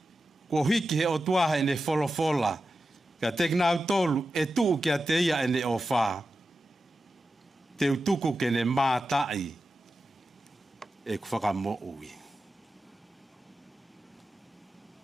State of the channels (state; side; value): normal; both; correlation 0.92